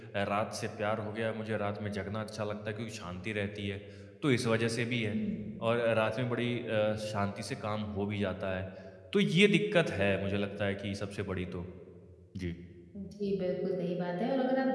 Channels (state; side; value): identical; both; correlation 1.00